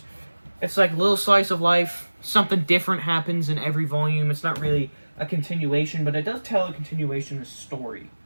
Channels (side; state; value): both; inverted; correlation -1.00